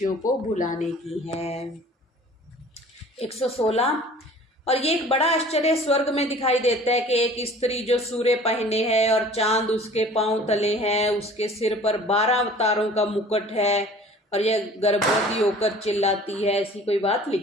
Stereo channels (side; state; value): both; normal; correlation 0.47